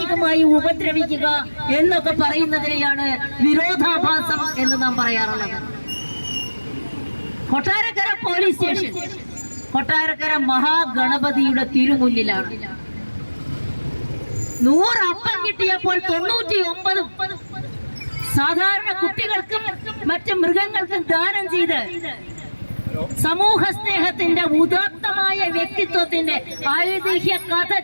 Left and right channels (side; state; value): both; inverted; correlation -1.00